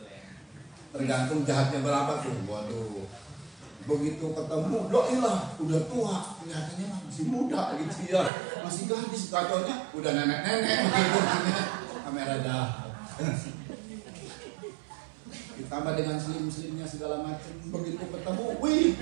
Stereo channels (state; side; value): drops out; left; at 8.3 s